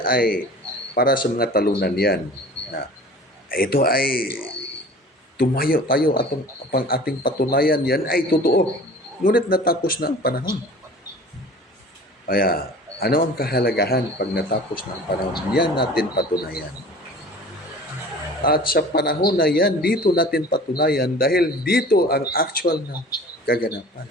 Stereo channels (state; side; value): normal; both; correlation 0.43